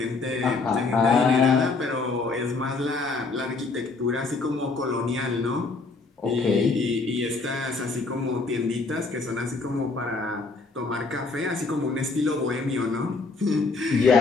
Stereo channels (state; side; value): quieter; right; 3.9 dB